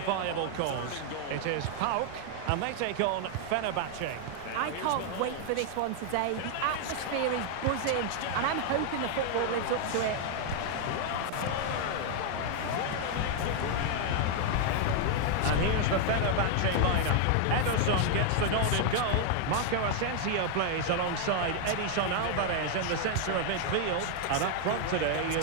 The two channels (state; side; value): different; both; correlation 0.00